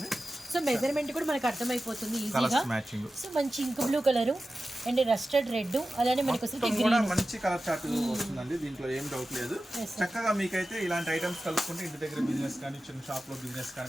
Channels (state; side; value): normal; both; correlation 0.94